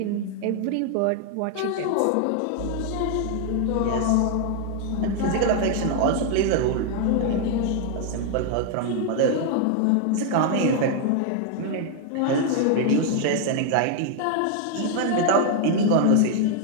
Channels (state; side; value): different; both; correlation 0.00